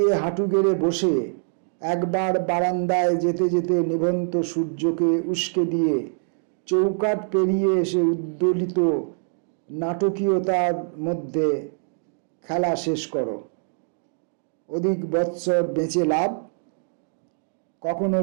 হাঁটু গেড়ে বসে, একবার বারান্দায় যেতে যেতে নিভন্ত সূর্যকে উস্কে দিয়ে চৌকাঠ পেরিয়ে এসে উদ্দোলিত নাটকীয়তার মধ্যে খেলা শেষ করো। অধিক বৎসর বেঁচে লাভ, কখনো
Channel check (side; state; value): left; silent; digital silence